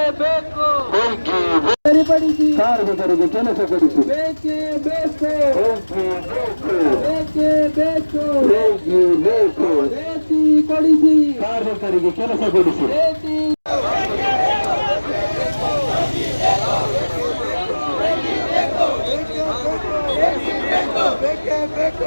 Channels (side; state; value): both; inverted; correlation -1.00